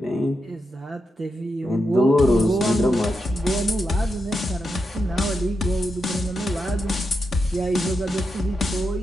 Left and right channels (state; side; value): normal; both; correlation 0.86